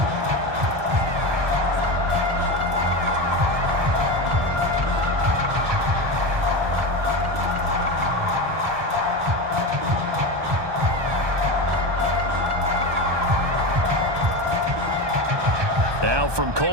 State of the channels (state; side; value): late; left; 1.2 ms